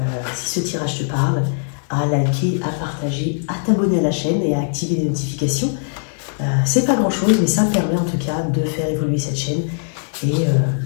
si ce tirage te parle, à liker, à partager, à t'abonner à la chaîne et à activer les notifications. C'est pas grand chose, mais ça me permet en tout cas de faire évoluer cette chaîne et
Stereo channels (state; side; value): silent; right; 66 dB below the other